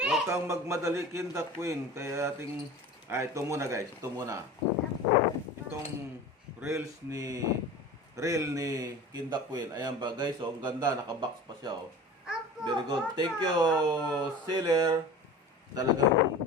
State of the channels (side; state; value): both; normal; correlation 0.36